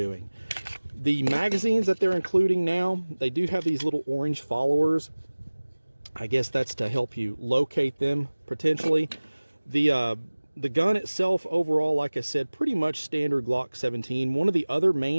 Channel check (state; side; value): inverted; both; correlation -1.00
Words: The magazines that they're including now, they do have these little orange followers. I guess that's to help you locate them potentially. The gun itself overall, like I said, pretty much standard Glock 17. One of the other